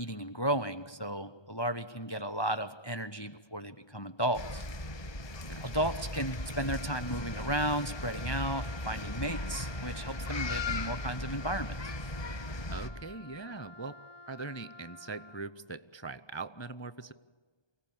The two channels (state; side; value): late; right; 1.2 ms